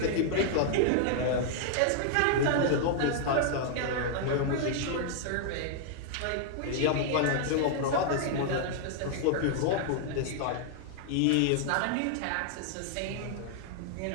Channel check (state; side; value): different; both; correlation -0.01